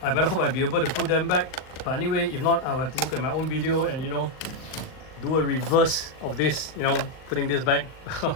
I better hope I'll be able to put them back. But anyway, if not, I'll have to look at my own video and, you know, do a reverse of this, you know, putting this back.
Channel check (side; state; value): right; late; 39 ms